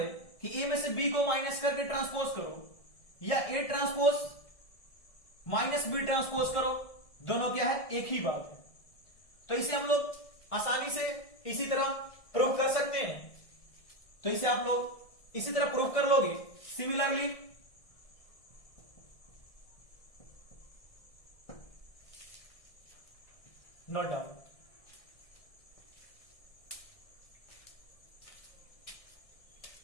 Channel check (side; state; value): right; late; 1.6 ms